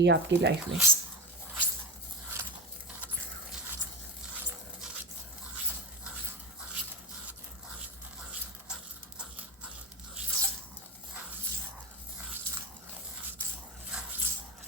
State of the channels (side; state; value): both; normal; correlation 0.19